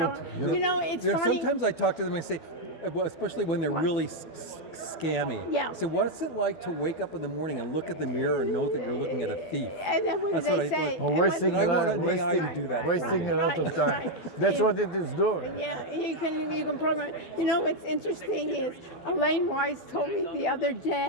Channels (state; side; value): late; right; 12 ms